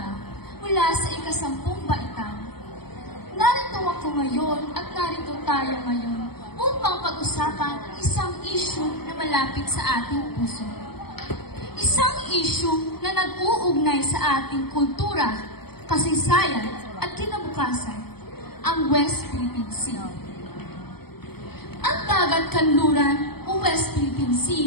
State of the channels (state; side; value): late; right; 0.96 ms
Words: mula sa ika-10 baitang. Narito ako ngayon at narito tayo ngayon upang pag-usapan ang isang issue na malapit sa ating puso. Isang issue na nag-uugnay sa ating kultura, kasaysayan at kinabukasan, ang West Philippine Sea. Ang dagat kanluran o West Philippine